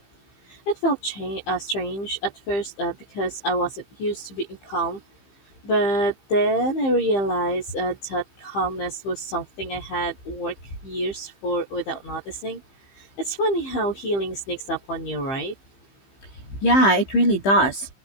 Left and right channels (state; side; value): late; right; 15 ms